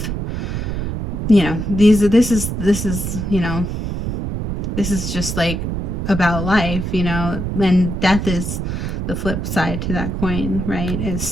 you know, this is, you know, this is just like about life, you know, and death is the flip side to that coin, right?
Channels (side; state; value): right; noise; rumble, 3 dB below the sound